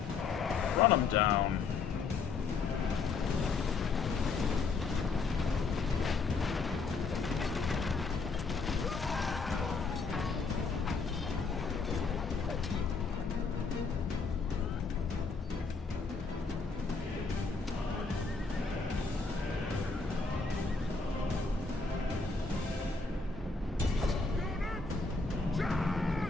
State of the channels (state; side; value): quieter; right; 4.5 dB